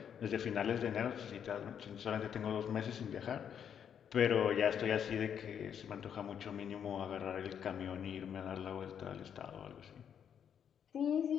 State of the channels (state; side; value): quieter; right; 8.3 dB